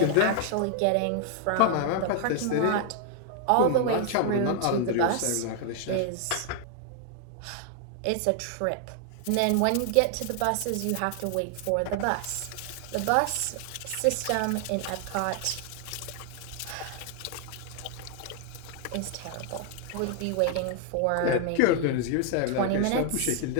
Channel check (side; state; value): both; different; correlation 0.00